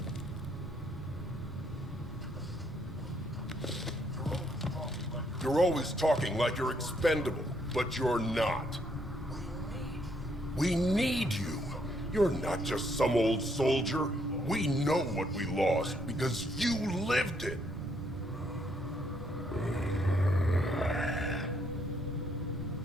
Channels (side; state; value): both; normal; correlation 0.71